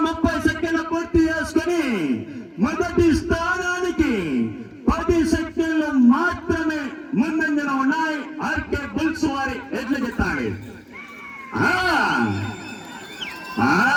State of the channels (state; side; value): identical; both; correlation 1.00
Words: 30 సెకండ్ల పూర్తి చేసుకుని మొదటి స్థానానికి 10 సెకండ్లు మాత్రమే ముందంజలో ఉన్నాయి. ఆర్కే బుల్స్ వారి ఎడ్ల జత.